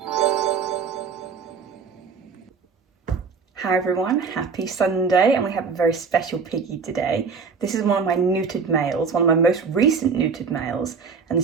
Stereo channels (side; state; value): left; quieter; 5.4 dB